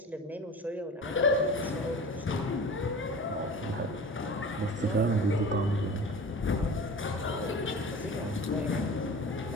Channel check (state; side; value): normal; both; correlation 0.36